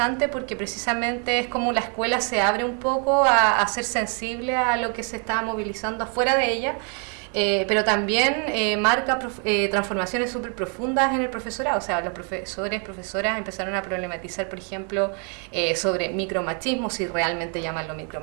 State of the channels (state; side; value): quieter; left; 39.1 dB